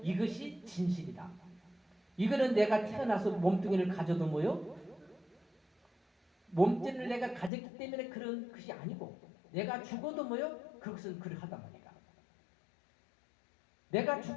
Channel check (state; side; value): drops out; right; at 7.5 s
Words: 이것이 진실이다. 이거는 내가 태어나서 몸뚱이를 가져도 뭐요? 몸뚱이를 내가 가졌기 때문에 그런 것이 아니고 내가 죽어도 뭐요? 그것은 그러하단 말이다. 내가